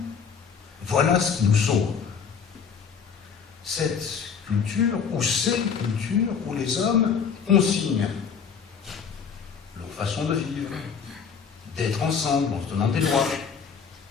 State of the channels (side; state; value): right; quieter; 6.5 dB